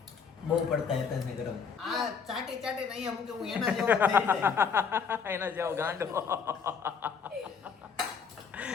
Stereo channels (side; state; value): right; quieter; 6.1 dB